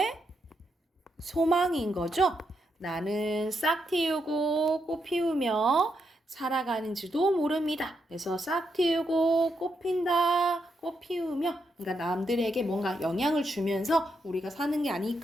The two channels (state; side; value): normal; both; correlation 0.81